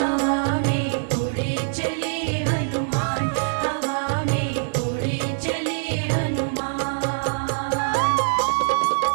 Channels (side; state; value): left; silent; digital silence